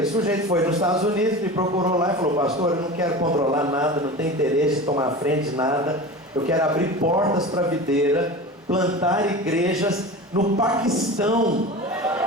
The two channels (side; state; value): both; normal; correlation 0.32